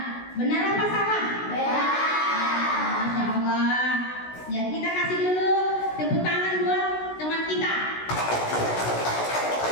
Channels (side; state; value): right; late; 16 ms